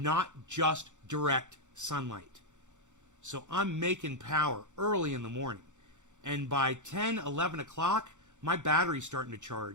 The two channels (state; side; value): late; left; 0.85 ms